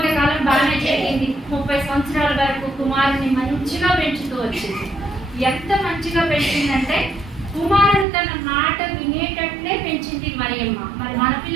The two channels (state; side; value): drops out; left; at 8.1 s